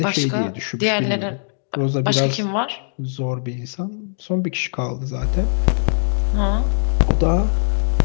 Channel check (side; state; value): right; silent; digital silence